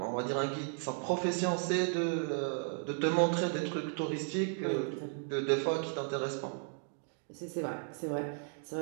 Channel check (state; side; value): silent; left; 55 dB below the other